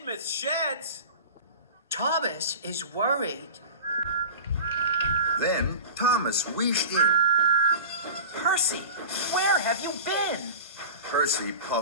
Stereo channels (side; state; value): both; inverted; correlation -0.34